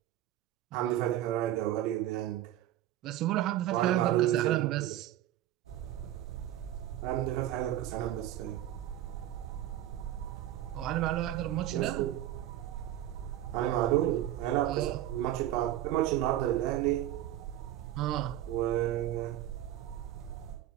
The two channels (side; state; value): left; quieter; 13.1 dB